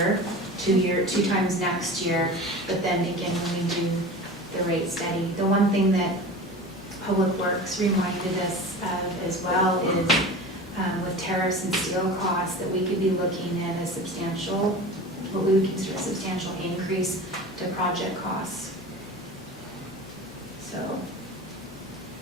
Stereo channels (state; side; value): normal; both; correlation 0.34